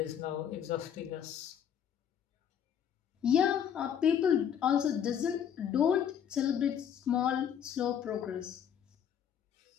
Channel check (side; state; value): right; quieter; 8.7 dB